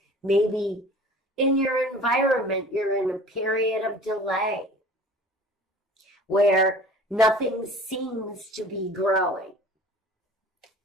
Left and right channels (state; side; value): normal; both; correlation 0.44